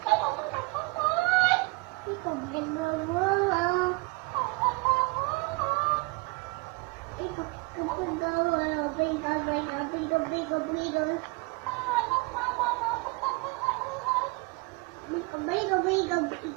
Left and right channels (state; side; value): quieter; left; 27.3 dB